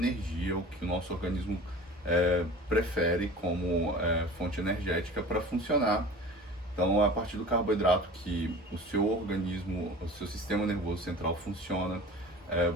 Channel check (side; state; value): both; normal; correlation 0.40